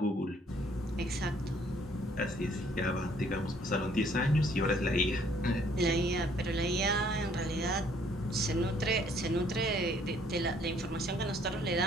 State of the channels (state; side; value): normal; both; correlation 0.62